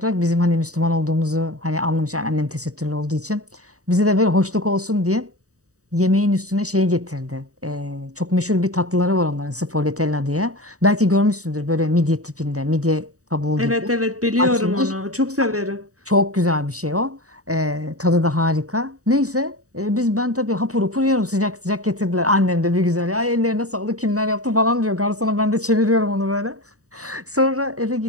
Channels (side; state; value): left; late; 0.66 ms